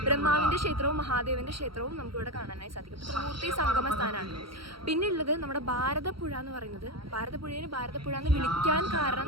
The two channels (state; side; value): late; left; 0.74 ms